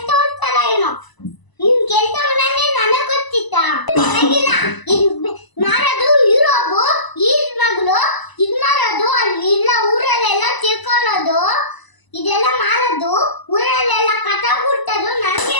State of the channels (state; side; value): late; right; 1.0 ms